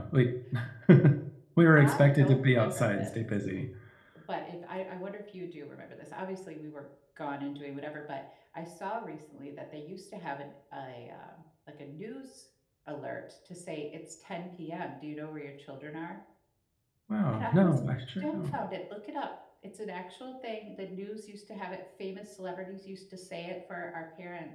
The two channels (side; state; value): both; identical; correlation 1.00